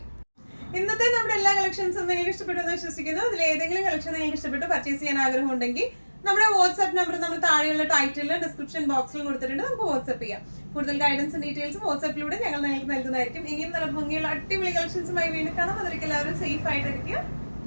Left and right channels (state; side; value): inverted; both; correlation -1.00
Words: ഇന്നത്തെ നമ്മുടെ എല്ലാ കളക്ഷൻസും നിങ്ങൾക്ക് ഇഷ്ടപ്പെട്ടു എന്ന് വിശ്വസിക്കുന്നു. അതിൽ ഏതെങ്കിലും കളക്ഷൻ നിങ്ങൾക്ക് ഇഷ്ടപ്പെട്ട് പർച്ചേസ് ചെയ്യാൻ ആഗ്രഹം ഉണ്ടെങ്കിൽ നമ്മുടെ വാട്സ്ആപ്പ് നമ്പർ നമ്മൾ താഴെയുള്ള ടൈറ്റിലും ഡിസ്ക്രിപ്ഷൻ ബോക്സിലും കൊടുത്തിട്ടുണ്ട്, നമുക്ക് വാട്സ്ആപ്പ് ചെയ്യാം. കൂടുതൽ ഗൈഡൻസും ഡീറ്റെയിൽസും വാട്സ്ആപ്പിലൂടെ ഞങ്ങൾ നിങ്ങൾക്ക് നൽകുന്നതായിരിക്കും. ഇനിയും നല്ല ഭംഗിയുള്ള അടിപൊളി കളക്ഷൻസുമായി വീണ്ടും കാണാം. അതിലേക്ക് എല്ലാവരും സേഫ് ആയിട്ടിരിക്കുക.